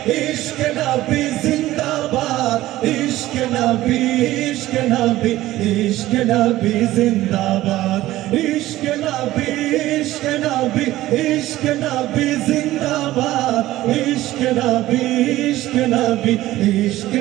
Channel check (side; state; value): left; quieter; 15.8 dB